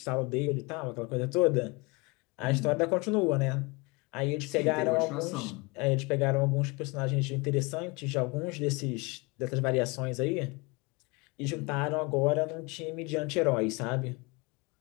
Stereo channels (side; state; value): right; quieter; 27.4 dB